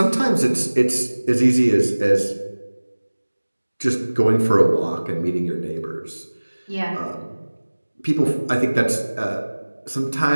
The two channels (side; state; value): both; inverted; correlation -1.00